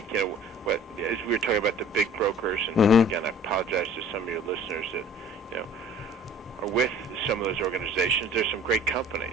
as we were talking about the big brokers, and again, I apologize to some of your listeners that are with some of those organizations. There's some great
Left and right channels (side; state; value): both; normal; correlation 0.49